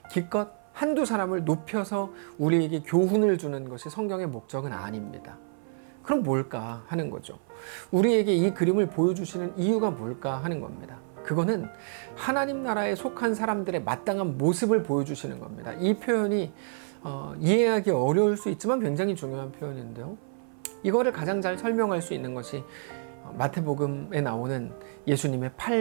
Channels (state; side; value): silent; left; 55 dB below the other